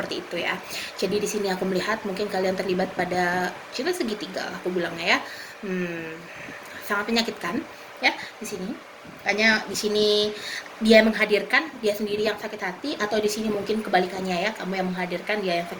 itu ya. Jadi di sini aku melihat mungkin kalian terlibat pada cinta segitiga, aku bilangnya ya, sangat menyakitkan ya di sini. Hanya di sini dia menghadirkan, dia sendiri yang sakit hati, atau di sini mungkin kebalikannya ya, kamu yang menghadirkan, dia yang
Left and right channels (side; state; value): both; identical; correlation 1.00